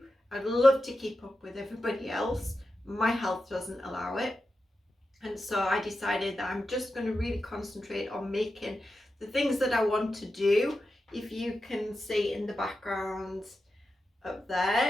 I'd love to keep up with everybody else. My health doesn't allow it. And so I decided that I'm just going to really concentrate on making the things that I want to do. If you can see in the background up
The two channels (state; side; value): normal; both; correlation 0.90